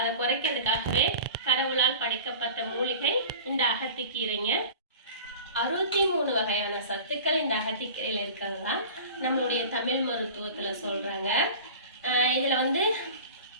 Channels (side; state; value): both; inverted; correlation -0.38